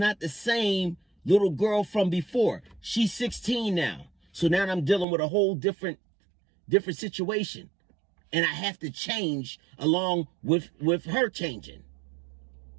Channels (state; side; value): drops out; left; at 5.1 s